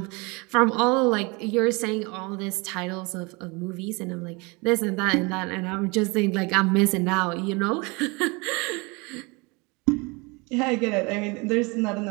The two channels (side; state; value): left; quieter; 27.6 dB